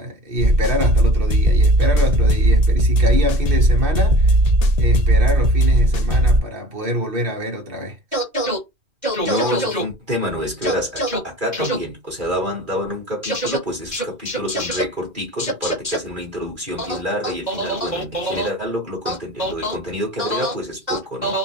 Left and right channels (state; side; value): late; left; 2.4 ms